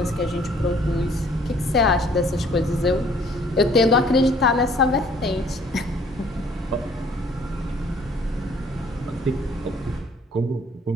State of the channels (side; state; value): both; normal; correlation 0.58